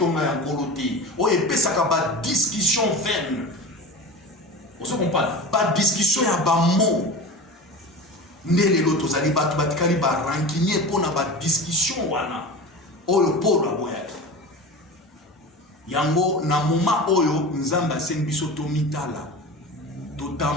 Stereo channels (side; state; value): both; normal; correlation 0.31